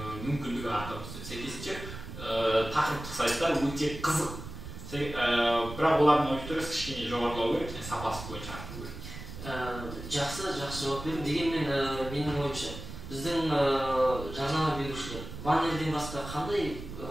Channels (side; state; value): right; noise; rumble, 10 dB below the sound